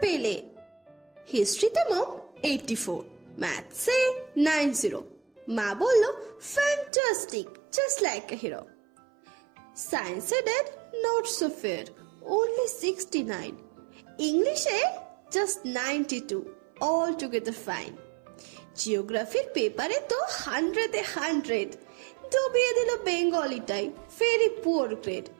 পেলে? হিস্ট্রিতে মম 84, ম্যাথসে 90। মা বলল, fantastic, just like a hero. সায়েন্সে dad not so fair, only 69। ইংলিশে জাস্ট 92, অল টুগেদার ফাইন। জিওগ্রাফির পেপারে তো 100-এ 100, ডুবিয়ে দিল বেঙ্গলিটাই, ভেরি পুয়ার গ্রেড।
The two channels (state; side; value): drops out; left; at 6.9 s